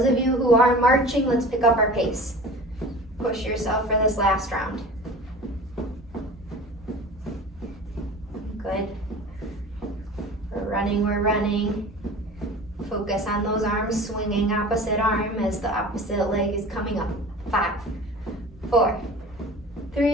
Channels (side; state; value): both; normal; correlation 0.39